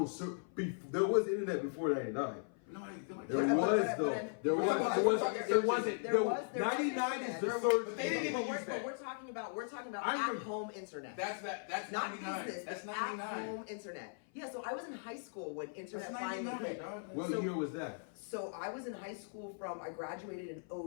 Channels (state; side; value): silent; right; 52 dB below the other